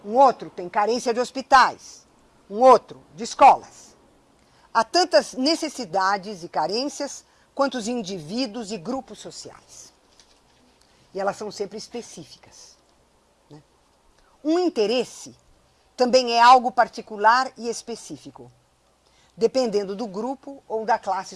um outro tem carência de hospitais, um outro de escolas. Há tantas necessidades e carências quanto os indivíduos e grupos sociais. E elas são sempre específicas. Né? Um interesse também é algo particular e específico, dependendo do grupo ou da classe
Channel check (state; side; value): identical; both; correlation 1.00